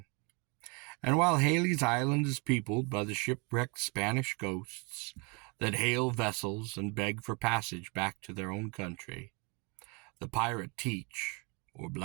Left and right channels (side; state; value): left; quieter; 31.3 dB